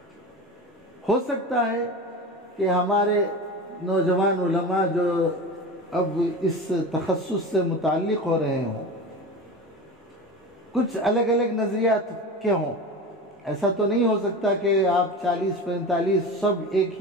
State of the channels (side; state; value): both; normal; correlation 0.29